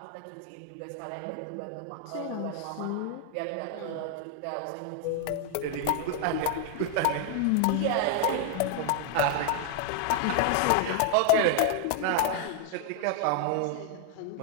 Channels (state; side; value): different; both; correlation 0.00